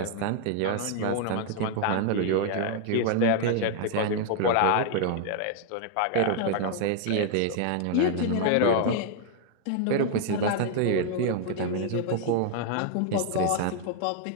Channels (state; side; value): different; both; correlation 0.00